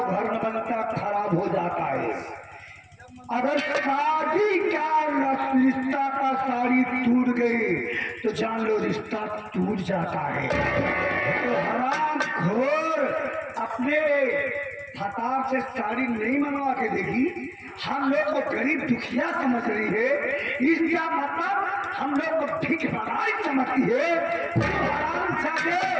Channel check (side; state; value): both; identical; correlation 1.00